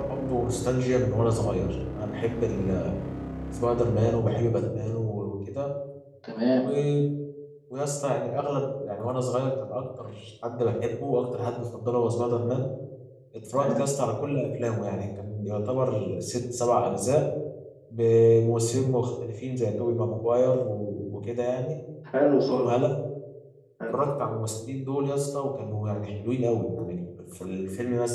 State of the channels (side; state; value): both; identical; correlation 1.00